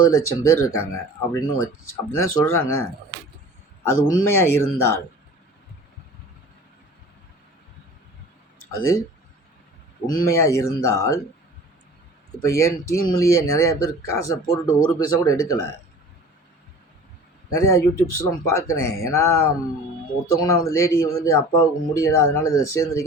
லட்சம் பேர் இருக்காங்க அப்படின்னு தான் சொல்கிறாங்க. அது உண்மையாக இருந்தால் இப்போ என் டீம்லேயே நிறையா பேர் காசை போட்டுட்டு ஒரு பைசா கூட எடுக்கலை. நிறையா யூடியூப்ஸ்லாம் பார்க்குறேன். ஏன்னா ஒருத்தவங்கன்னா லேடி அப்பாவுக்கு முடியலை, அதனால் இதில்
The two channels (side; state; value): both; normal; correlation 0.42